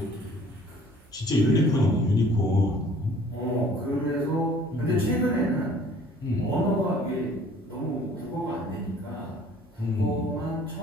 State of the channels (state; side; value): normal; both; correlation 0.53